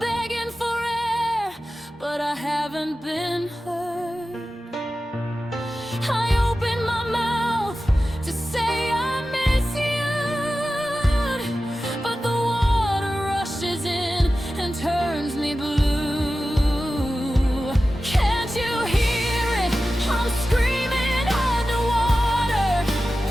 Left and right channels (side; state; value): both; normal; correlation 0.94